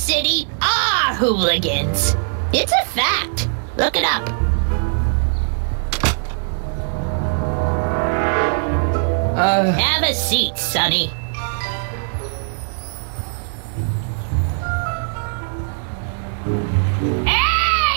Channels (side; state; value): left; silent; digital silence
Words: are hooligans. It's a fact. Look it up. Have a seat, Sonny.